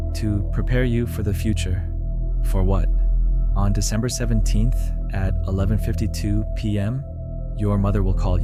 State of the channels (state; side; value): identical; both; correlation 1.00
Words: To prepare you for the future." "For what?" "On December 17th at 11:52 p.m., your mother will call